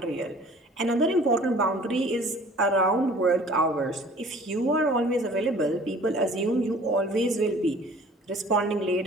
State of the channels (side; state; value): both; normal; correlation 0.50